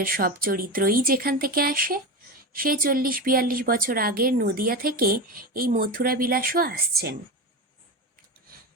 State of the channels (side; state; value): both; normal; correlation 0.21